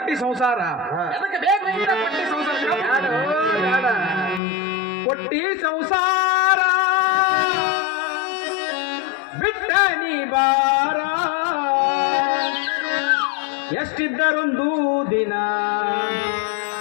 ಸಂಸಾರ ಎದಕ್ಕೆ ಬೇಕು ಇಂತ ಕೊಟ್ಟಿ ಸಂಸಾರ ಕೊಟ್ಟಿ ಸಂಸಾರ ಬಿಟ್ಟ ನೀ ಬಾರ ಎಷ್ಟಿದ್ದರೊಂದು ದಿನ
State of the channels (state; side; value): drops out; right; at 4.4 s